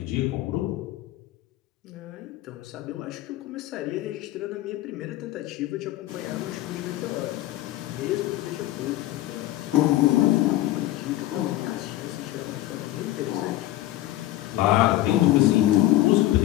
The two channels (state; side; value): quieter; right; 15.6 dB